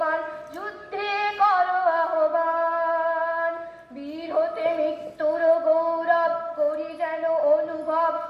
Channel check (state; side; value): identical; both; correlation 1.00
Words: যুদ্ধে করো আহ্বান, বীর হতে মৃত্যুর গৌরব করি যেন অনুভব।